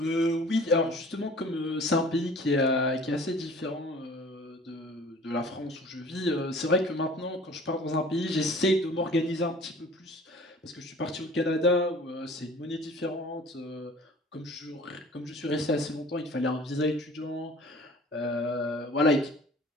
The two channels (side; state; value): both; normal; correlation 0.47